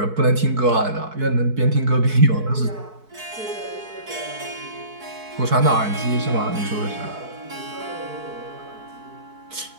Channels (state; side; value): late; left; 4.6 ms